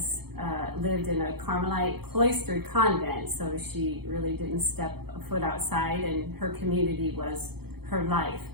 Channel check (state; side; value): late; left; 0.96 ms